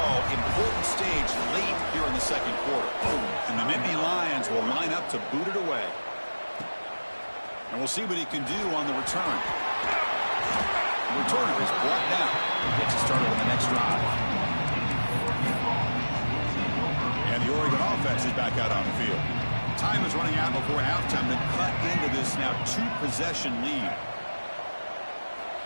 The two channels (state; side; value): inverted; both; correlation -1.00